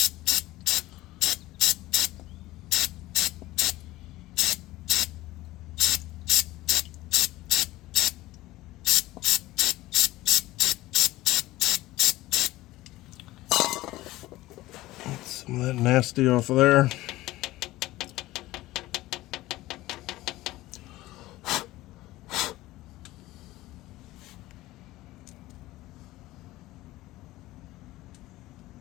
Get some of that nasty off of there.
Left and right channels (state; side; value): quieter; right; 17.6 dB